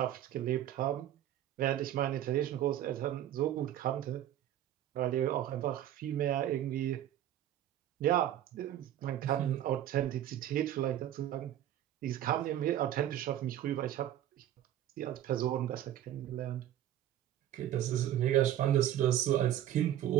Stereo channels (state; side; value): quieter; left; 12.0 dB